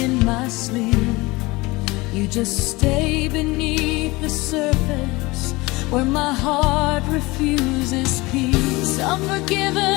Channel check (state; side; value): quieter; right; 22.4 dB